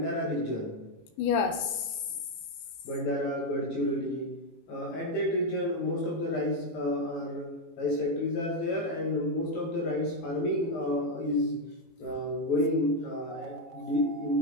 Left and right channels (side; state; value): right; late; 19 ms